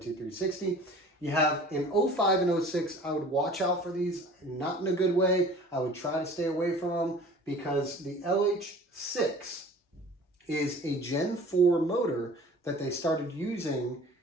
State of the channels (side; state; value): both; normal; correlation 0.46